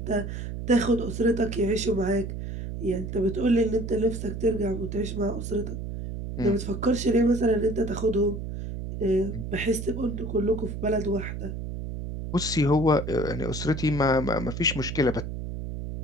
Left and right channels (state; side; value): noise; right; hum, 6 dB below the sound